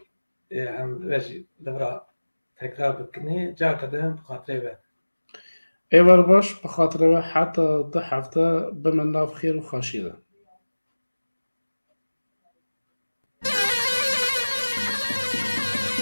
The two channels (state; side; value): inverted; both; correlation -1.00